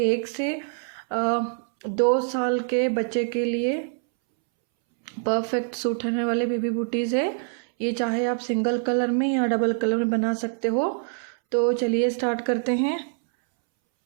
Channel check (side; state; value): left; silent; 62 dB below the other